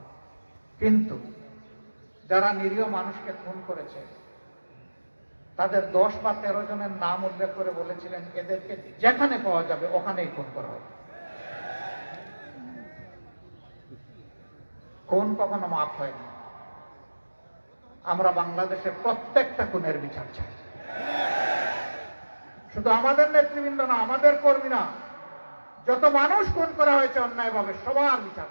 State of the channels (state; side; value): inverted; both; correlation -1.00